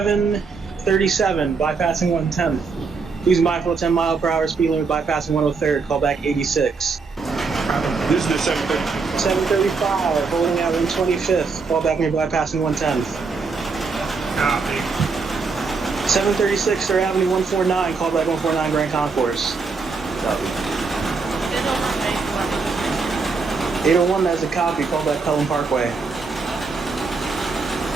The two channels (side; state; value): left; quieter; 4.6 dB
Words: bypassing 110th. Please mindful of 10 mile per hour speed limit, bypassing 103rd, call back 86. This is the 730. 735, holding out 125th, call back near bypassing 110th. Copy. 736 3rd Avenue 149, call back 149 Grand Concourse. Copy. 801, that's a copy, call back Pelham Parkway.